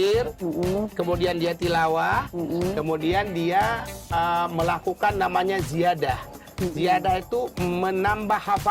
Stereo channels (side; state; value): both; identical; correlation 1.00